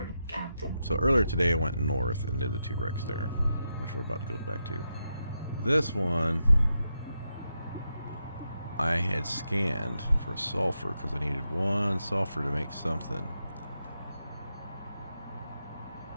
Captain. So earlier today I went north and did the 2 wrecks there, which we're about to go back to. This one I had scanned for sulfur because I needed 1 sulfur to make something.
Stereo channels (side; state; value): both; inverted; correlation -0.85